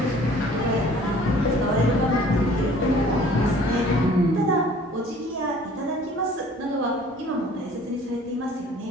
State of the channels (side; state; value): both; normal; correlation 0.52